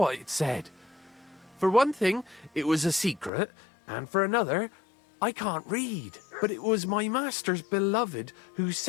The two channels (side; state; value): right; drops out; at 3.3 s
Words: it said. For one thing, it was a secret, and for another, I can't read. But it was my master's beloved who